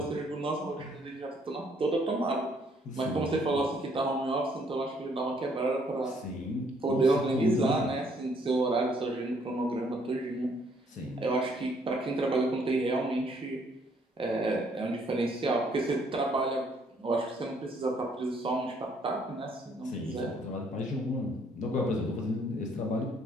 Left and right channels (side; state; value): both; normal; correlation 0.66